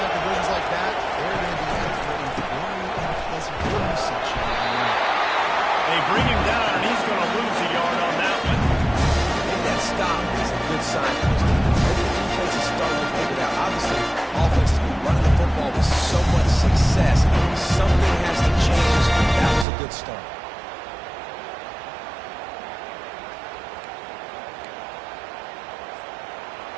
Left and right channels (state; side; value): drops out; left; at 19.7 s